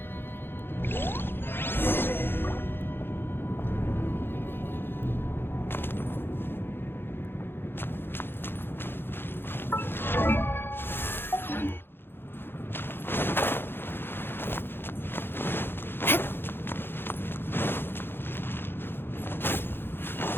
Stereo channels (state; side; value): late; right; 0.10 ms